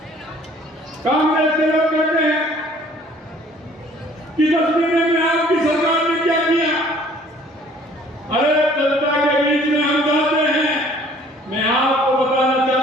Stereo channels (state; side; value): normal; both; correlation 0.55